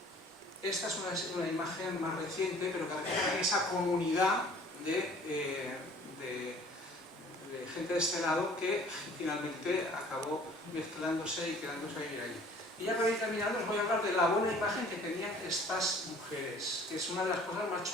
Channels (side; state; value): both; normal; correlation 0.52